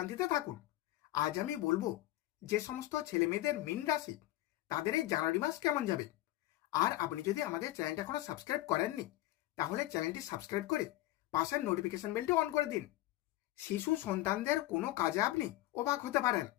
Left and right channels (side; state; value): right; quieter; 16.5 dB